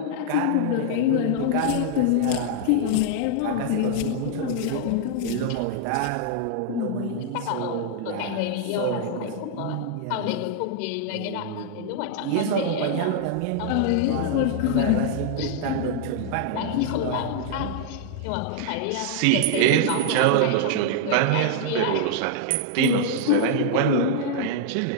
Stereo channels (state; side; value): different; both; correlation -0.01